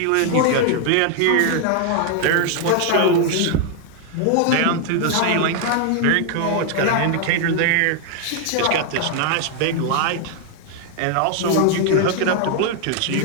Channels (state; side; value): different; both; correlation 0.00